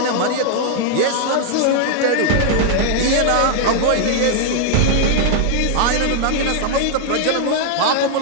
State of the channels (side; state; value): both; different; correlation 0.00